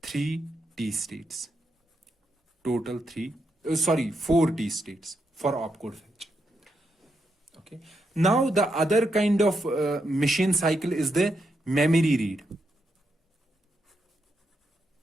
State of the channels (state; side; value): normal; both; correlation 0.82